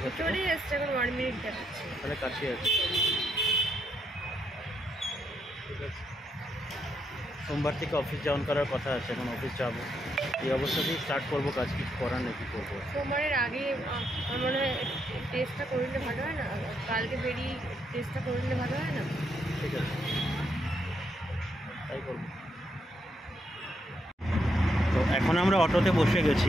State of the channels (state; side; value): normal; both; correlation 0.78